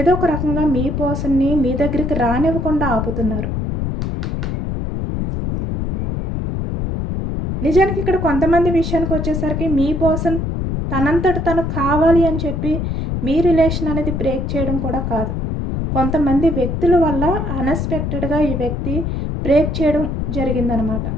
ఒక రకంగా మీ పర్సన్ని మీ దగ్గరికి రానివ్వకుండా ఆపుతున్నారు. నిజానికి ఇక్కడ కొంతమంది విషయానికి వచ్చేసరికి మీ పర్సన్ తనంతట తను కావాలి అని చెప్పి మీ రిలేషన్ అనేది బ్రేక్ చేయడం కూడా కాదు, కొంతమంది వ్యక్తుల వల్ల అన్ఎక్స్పెక్టెడ్గా ఈ వ్యక్తి బ్రేక్ చేయడం జరిగిందనమాట.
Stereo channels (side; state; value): left; noise; rumble, 2 dB below the sound